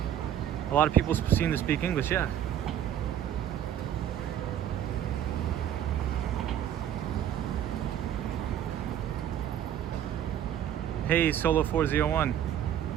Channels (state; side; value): quieter; left; 10.5 dB